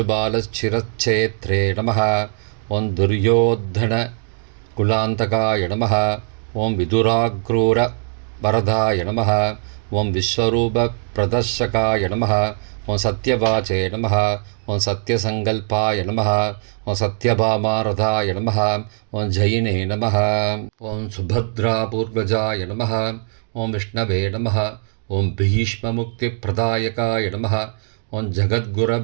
நமः. ஓம் துர்யோத்தன குலாந்தகாய நமः. ஓம் விதுராக்ரூர வரதாய நமः. ஓம் விஸ்வரூப பிரதர்ஷகாய நமः. ஓம் சத்யவாச்சே நமः. ஓம் சத்யசங்கல்பாய நமः. ஓம் சத்யபாமாரதாய நமः. ஓம் ஜயினே நமः. ஓம் சுபத்ராபூர்வஜாய நமः. ஓம் விஷ்ணவே நமः. ஓம் பீஷ்மமுக்திப்பிரதாயகாய நமः. ஓம்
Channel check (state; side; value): silent; left; 66 dB below the other